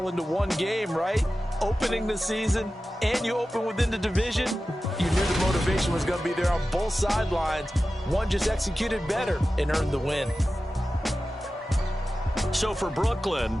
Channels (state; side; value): normal; both; correlation 0.94